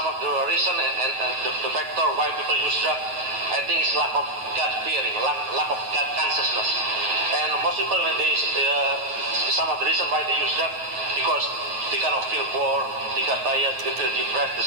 of the reason and the factor why people use drug, I think, is lack of God fearing, lack of God consciousness. And most people, when some of the reason why they use drug, because they kind of feel bored, they got tired, they feel depressed,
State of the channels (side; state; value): left; late; 9.3 ms